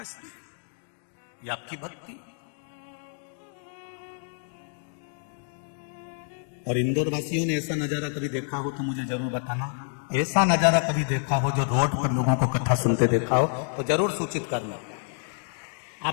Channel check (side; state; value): right; silent; 59 dB below the other